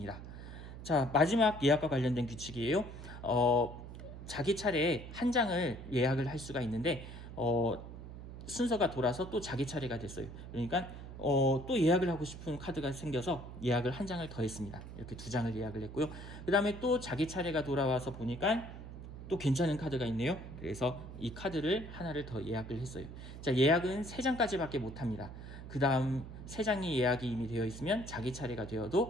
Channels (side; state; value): right; noise; hum, 12 dB below the sound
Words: 자, 마지막 예약과 관련된 규칙이에요. 자기 차례에 한 장을 예약을 할 수가 있는데 순서가 돌아서 또 자기 차례가 됐어요. 그러니까 또 예약을 하고 싶은 카드가 생겨서 예약을 한 장을 더 했습니다. 이렇게 2장을 예약을 했고요. 그 다음에 또 자기 차례가 돌아와서 보니까 또 괜찮은 카드가 있네요. 그래서 이 카드를 하나를 더 예약을 했어요. 자, 예약은 3장까지밖에 못합니다. 그 다음 3장이 예약이 이미 되어 있으면 자기 차례가